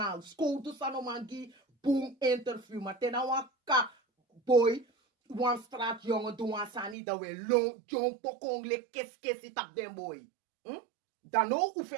Skoutu sanoma gi boom interview. Maar tena waka boy. Wan straat jongen doen wan sani. Dat we long jong pokong le kes tap den boy. Dan ook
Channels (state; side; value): drops out; left; at 7.0 s